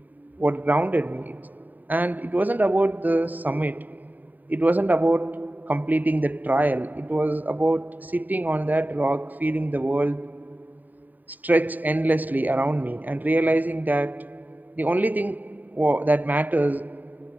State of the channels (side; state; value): left; late; 0.085 ms